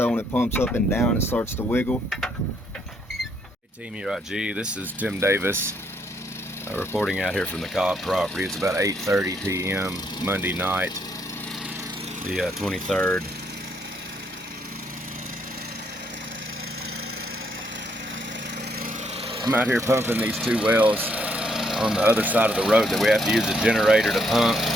when it pumps up and down, it starts to wiggle. Hey Team K.I.N.G, this is Tim Davis reporting out here from the Cobb property. It's about 8:30 p.m. Monday night, the 23rd. I'm out here pumping these 2 wells on the other side of the road that we have to use a generator to pump.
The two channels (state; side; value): normal; both; correlation 0.72